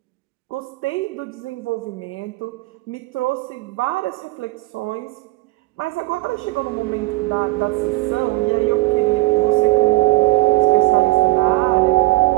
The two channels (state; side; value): quieter; left; 21.8 dB